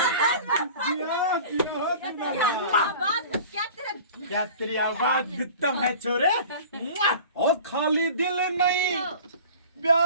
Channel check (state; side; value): inverted; both; correlation -0.42